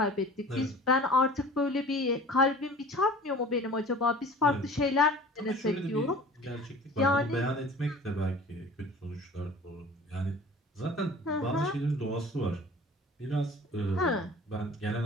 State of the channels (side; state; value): both; normal; correlation 0.44